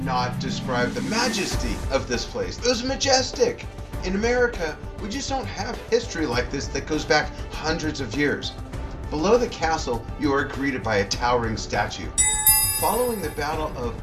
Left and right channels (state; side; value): identical; both; correlation 1.00